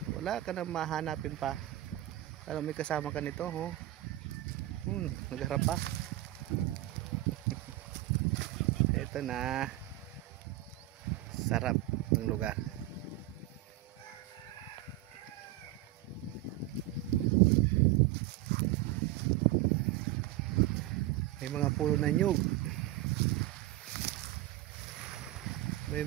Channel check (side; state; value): left; quieter; 15.3 dB